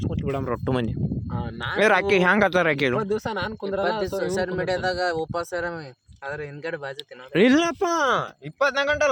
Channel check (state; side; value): identical; both; correlation 1.00